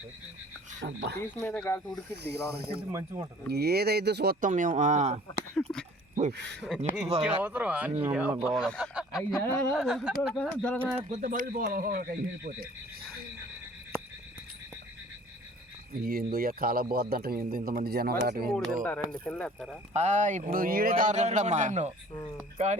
ఏదైతే చూస్తాం మేము. ఏందో కాల పోద్దంట ఇంతమంది జనం ఇప్పుడు ఈడే తారుతాడమ్మా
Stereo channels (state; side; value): normal; both; correlation 0.51